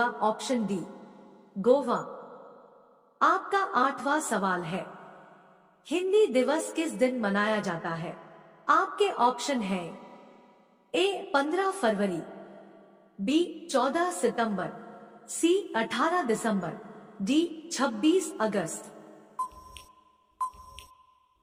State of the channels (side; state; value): both; identical; correlation 1.00